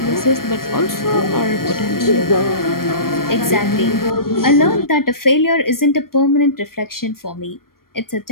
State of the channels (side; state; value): right; late; 0.93 ms